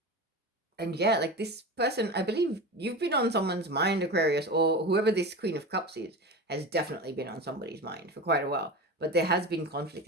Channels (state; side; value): normal; both; correlation 0.27